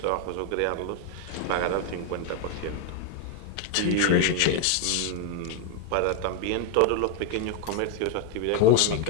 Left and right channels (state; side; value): different; both; correlation 0.00